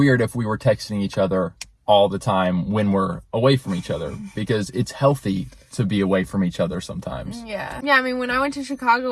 if we were texting each other all the time when we're away from each other, because it's healthy to be away from each other sometimes. Yeah, I mean, when I went to Chicago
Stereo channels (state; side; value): identical; both; correlation 1.00